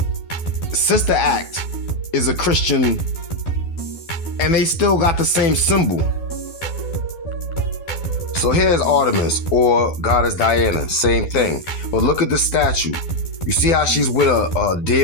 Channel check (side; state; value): right; late; 12 ms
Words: Sister Act is a Christian and they still got the same symbol. So here's Artemis, or Goddess Diana, same thing. But look at the statue. You see how she's with a